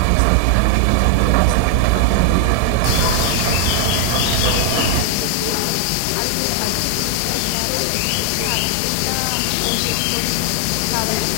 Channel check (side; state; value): both; different; correlation 0.00